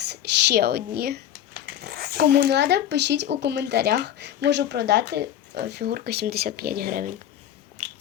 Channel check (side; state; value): right; quieter; 11.1 dB